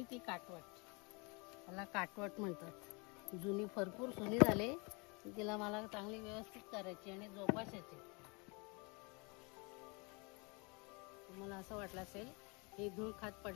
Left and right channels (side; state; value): right; quieter; 30.5 dB